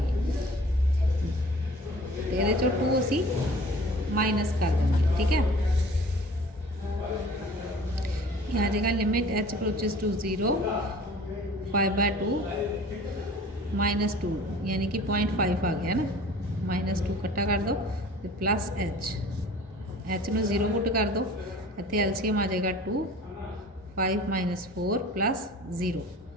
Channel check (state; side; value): normal; both; correlation 0.45